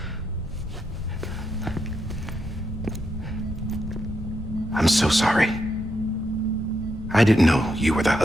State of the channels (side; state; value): both; normal; correlation 0.82